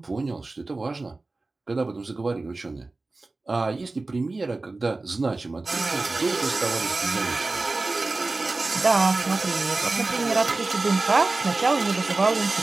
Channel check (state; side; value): quieter; left; 3.3 dB